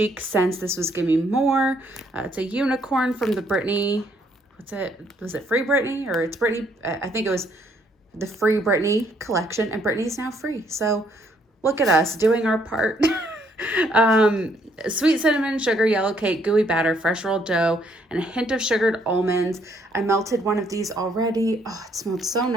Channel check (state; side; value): normal; both; correlation 0.68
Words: Scents. This was Gimme More. It's a unicorn from the Britney. What's it? Was it Free Britney or it's Britney? I think it was the Free Britney collection, and Britney's now free. So look at us doing our part. Sweet cinnamon, sugar, yellow cake, gooey batter, fresh rolled dough, and a hint of sugared almonds. I melted one of these already. Oh, it smelled so